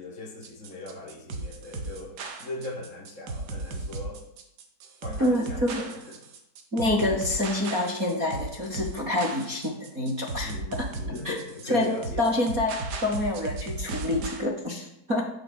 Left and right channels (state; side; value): late; left; 4.2 ms